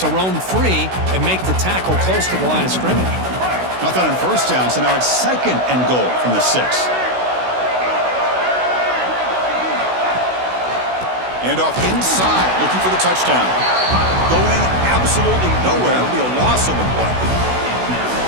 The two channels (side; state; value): left; late; 16 ms